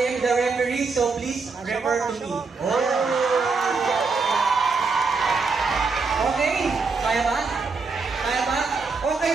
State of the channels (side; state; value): left; quieter; 4.5 dB